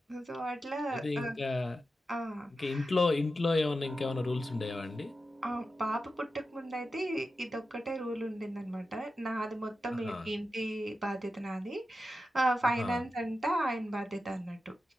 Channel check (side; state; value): both; normal; correlation 0.91